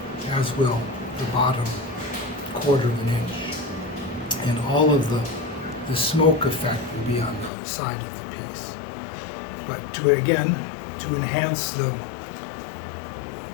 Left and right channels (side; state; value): right; drops out; at 7.5 s